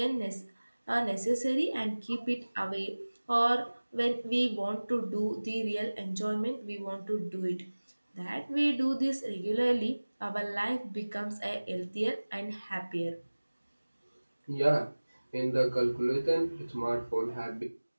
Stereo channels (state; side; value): inverted; both; correlation -1.00